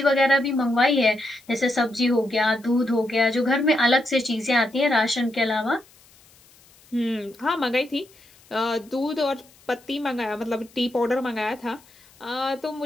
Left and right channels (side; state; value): left; noise; hiss, 28 dB below the sound